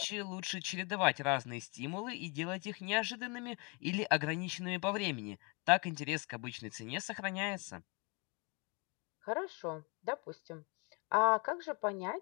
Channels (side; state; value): right; quieter; 31.4 dB